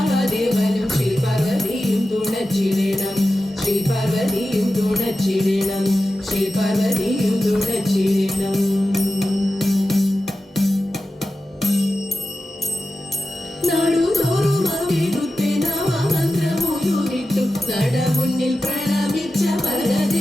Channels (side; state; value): both; normal; correlation 0.93